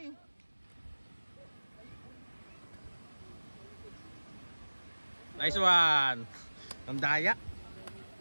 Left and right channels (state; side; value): inverted; both; correlation -1.00